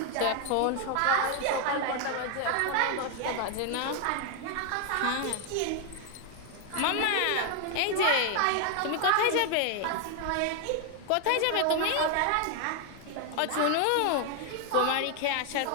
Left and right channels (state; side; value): different; both; correlation 0.00